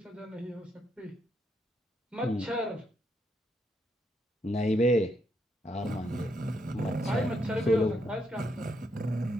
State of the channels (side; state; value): both; normal; correlation 0.77